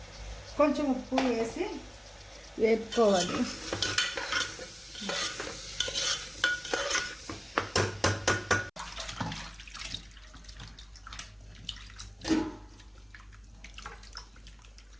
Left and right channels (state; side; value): identical; both; correlation 1.00